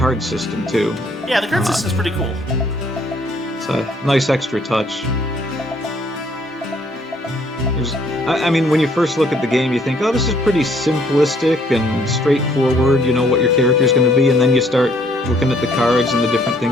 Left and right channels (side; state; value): both; normal; correlation 0.64